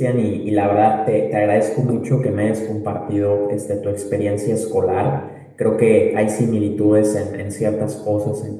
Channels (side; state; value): both; identical; correlation 1.00